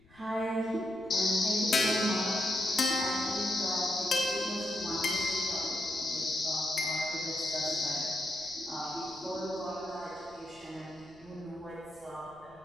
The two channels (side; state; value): left; noise; rumble, 28 dB below the sound